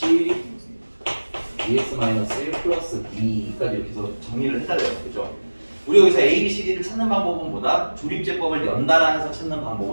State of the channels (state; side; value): inverted; both; correlation -1.00